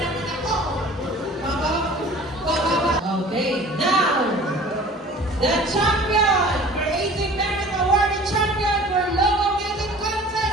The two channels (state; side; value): normal; both; correlation 0.45